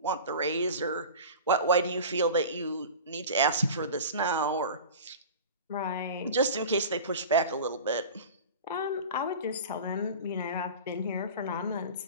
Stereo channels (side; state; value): both; inverted; correlation -0.34